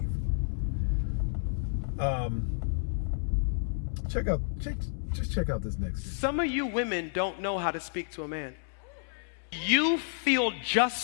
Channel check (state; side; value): silent; right; 57 dB below the other